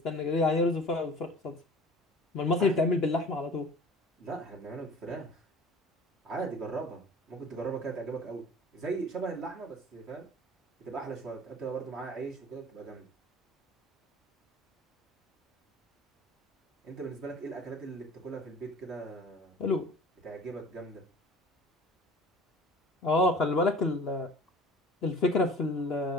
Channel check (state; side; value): normal; both; correlation 0.44